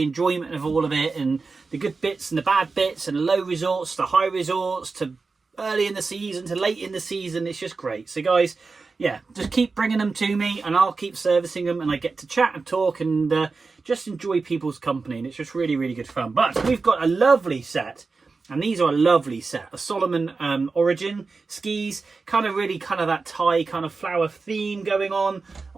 enjoyment of all of it and the good bits and the bad bits and low resorts to high resorts to early in the season to late in the season. It's just great. So guys, yeah, just keep bringing them to me and I'll keep servicing them and I get to chat and talk and just enjoy people's company, and it's just really, really good fun. But we've got a lovely set, and these are a lovely set, a Salomon Origin skis, kind of that Thai kind of flower theme going on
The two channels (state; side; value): quieter; left; 4.3 dB